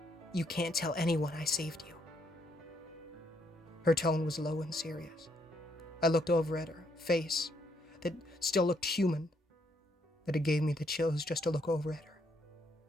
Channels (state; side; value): normal; both; correlation 0.73